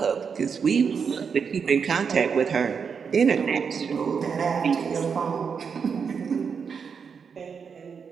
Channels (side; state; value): left; quieter; 6.2 dB